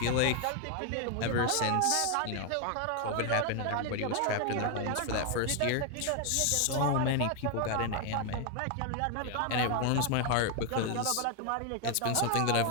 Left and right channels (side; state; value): both; different; correlation 0.01